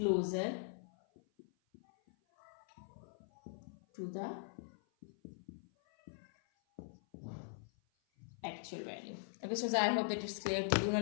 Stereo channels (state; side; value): silent; right; 50 dB below the other